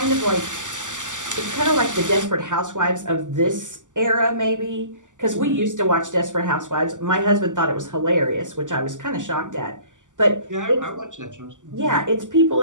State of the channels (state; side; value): late; left; 0.87 ms